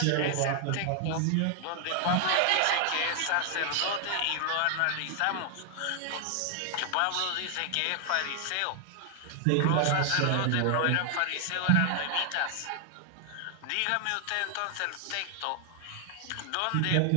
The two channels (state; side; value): different; both; correlation 0.00